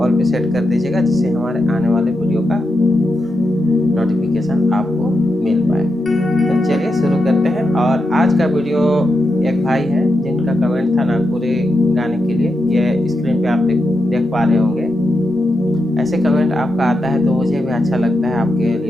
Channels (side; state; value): both; normal; correlation 0.87